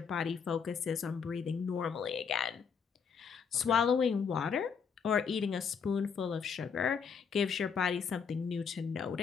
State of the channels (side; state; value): right; quieter; 6.4 dB